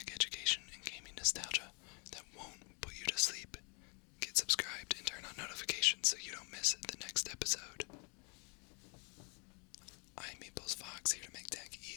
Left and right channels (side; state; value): right; quieter; 34.7 dB